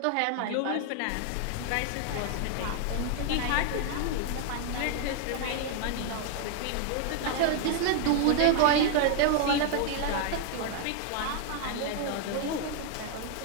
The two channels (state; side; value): different; both; correlation 0.00